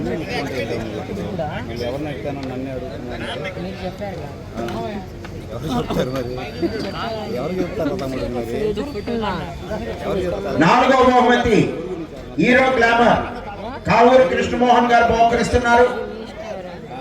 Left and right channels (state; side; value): identical; both; correlation 1.00